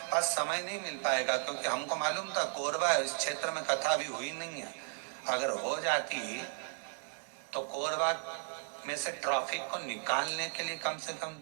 पास समय नहीं मिल पाएगा, क्योंकि हमको मालूम था कोरबा इस क्षेत्र में कथा भी हुई नहीं है। अगर हो जाती तो कोरबा में से ट्रैफिक को निकालने के लिए कम से कम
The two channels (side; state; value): left; silent; 54 dB below the other